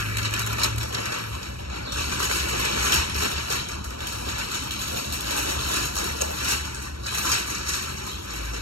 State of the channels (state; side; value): late; left; 0.74 ms